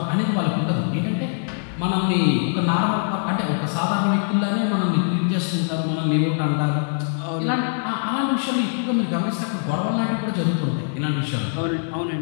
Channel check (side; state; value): right; silent; digital silence